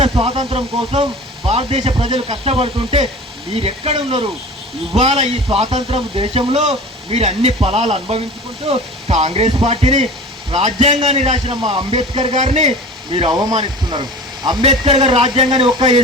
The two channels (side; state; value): both; normal; correlation 0.38